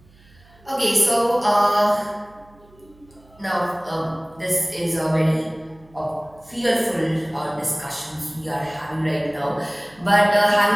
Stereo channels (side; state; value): right; noise; hum, 28 dB below the sound